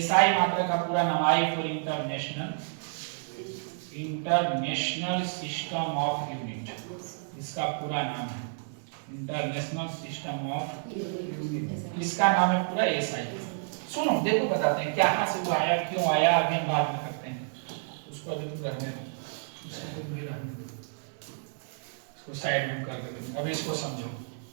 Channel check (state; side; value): silent; left; 58 dB below the other